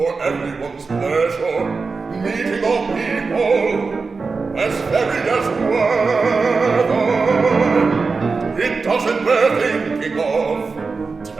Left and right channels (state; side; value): quieter; left; 4.4 dB